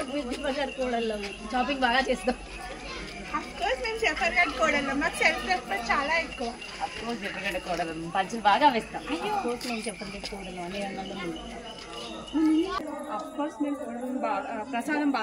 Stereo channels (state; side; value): identical; both; correlation 1.00